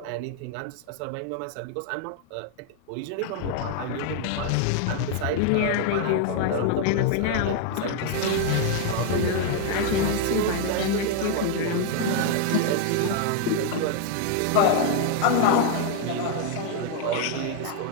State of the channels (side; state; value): both; different; correlation 0.00